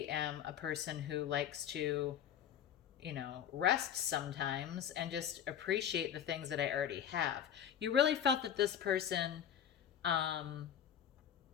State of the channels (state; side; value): quieter; right; 9.5 dB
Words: am a person who likes to, rest sometimes and just appreciate the things that I already have. You really felt that this person,